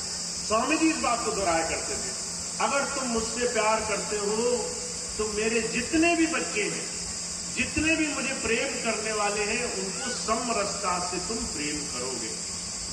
स्वामी जी इस बात को दोहराया करते थे, अगर तुम मुझसे प्यार करते हो तो मेरे जितने भी बच्चे हैं, जितने भी मुझे प्रेम करने वाले हैं, उनको समरसता से तुम प्रेम करोगे।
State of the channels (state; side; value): identical; both; correlation 1.00